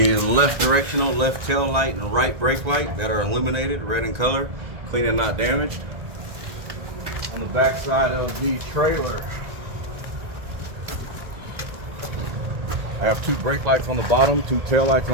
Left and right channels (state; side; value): late; left; 1.7 ms